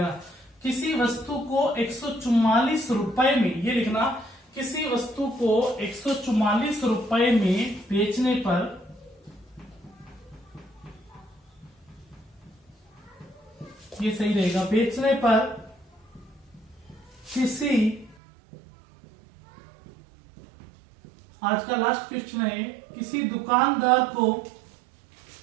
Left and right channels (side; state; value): left; drops out; at 18.2 s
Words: किसी वस्तु को 144 रुपए में, ये लिखना, किसी वस्तु को 144 रुपए में बेचने पर ये सही रहेगा, बेचने पर किसी, आज का लास्ट क्वेश्चन है, किसी दुकानदार को